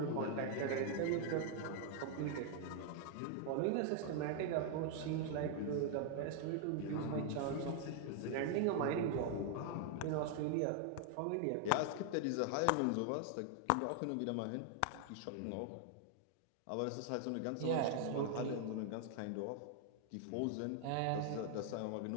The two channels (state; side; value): different; both; correlation 0.00